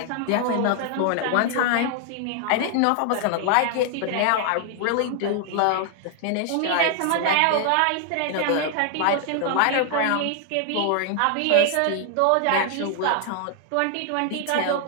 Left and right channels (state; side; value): different; both; correlation 0.00